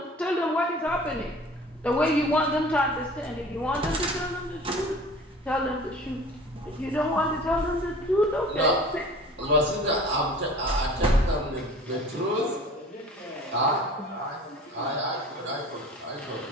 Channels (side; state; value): both; normal; correlation 0.44